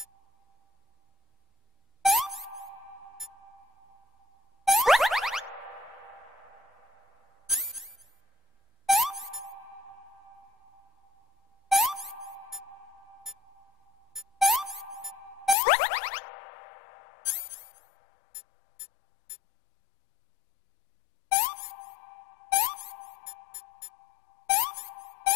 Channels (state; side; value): drops out; right; at 15.6 s